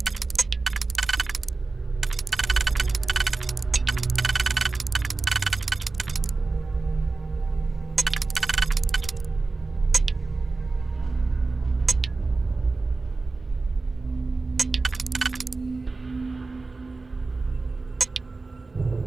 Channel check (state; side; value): quieter; left; 3.7 dB